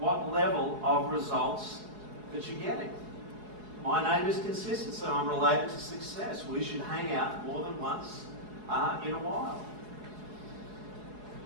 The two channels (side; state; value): left; late; 4.8 ms